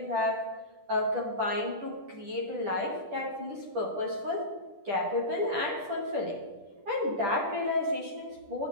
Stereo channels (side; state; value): left; late; 10 ms